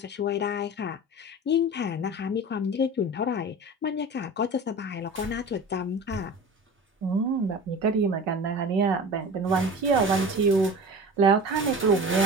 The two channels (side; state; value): both; normal; correlation 0.35